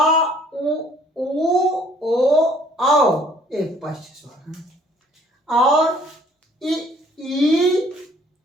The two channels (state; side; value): normal; both; correlation 0.59